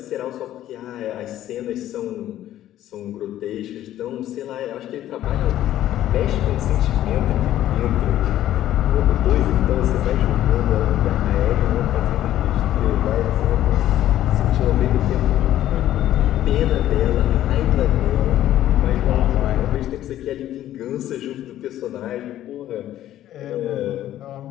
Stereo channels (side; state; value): right; quieter; 12.8 dB